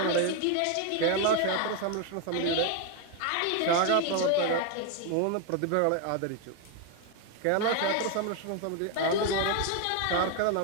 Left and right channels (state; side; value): different; both; correlation 0.01